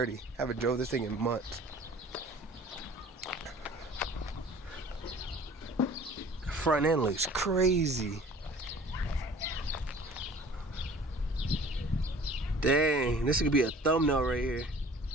I haven't drove this thing in months. The front end looks crazy. Dang, this could be a thumbnail right here.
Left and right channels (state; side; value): normal; both; correlation 0.48